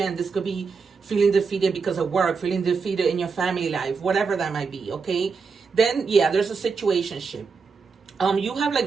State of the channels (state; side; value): quieter; left; 5.1 dB